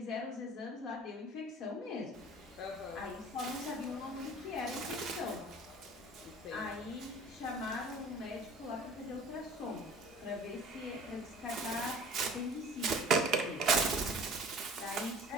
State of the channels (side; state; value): both; normal; correlation 0.46